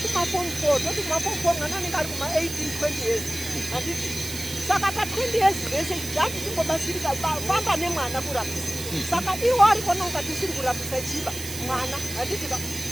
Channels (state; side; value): noise; right; hiss, 8 dB below the sound